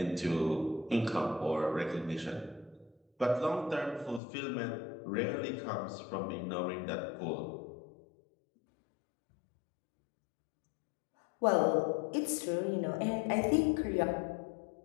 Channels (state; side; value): drops out; right; at 4.2 s